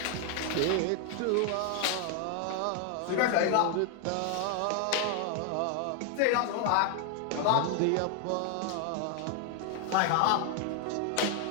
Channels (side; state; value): both; different; correlation 0.00